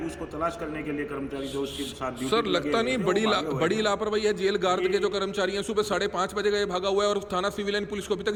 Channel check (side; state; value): both; identical; correlation 1.00